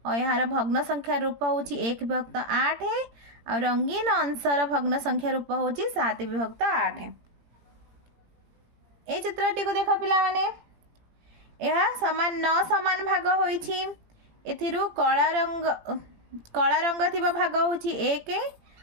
और यार भग्न संख्या रूप होछि एक विभक्त आठ और रंगीन अंशर भग्न संख्या रूप होछि सात विभक्त आठ। ए चित्रटी को देखो पिला माने यह समान नौ समान भाग होइछि। एथिरु कला रंग थिबा भाग होछि एक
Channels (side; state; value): left; late; 17 ms